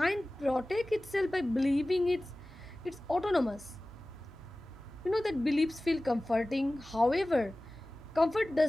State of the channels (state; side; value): noise; right; hum, 21 dB below the sound